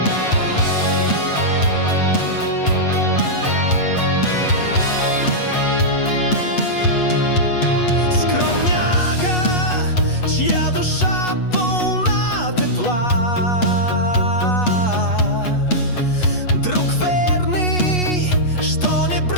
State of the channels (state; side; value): late; right; 8.2 ms